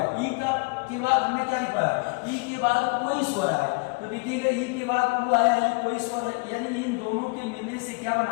ई का के बाद हमने क्या लिखा है, ई के बाद कोई स्वर आए तो देखिएगा ई के बाद ऊ आया है, कोई स्वर है, यानी इन दोनों के मिलने से क्या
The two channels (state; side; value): quieter; right; 31.5 dB